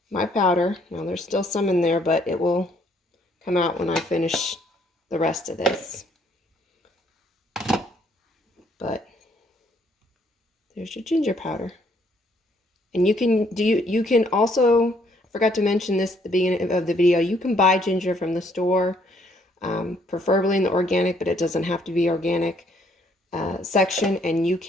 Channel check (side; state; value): both; normal; correlation 0.67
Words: my powder. Now there's still some in there, but it will come out when I finish the rest of this. But there's your ginger powder. And you can also, I forgot to mention this at the beginning of the video, you can buy ginger from the store, preferably in the organic, but it doesn't have to be organic section, and you